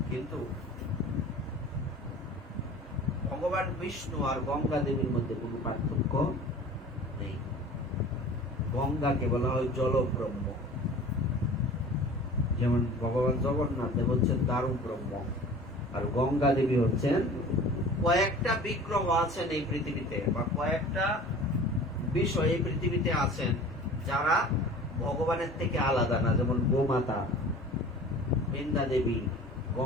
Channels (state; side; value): normal; both; correlation 0.42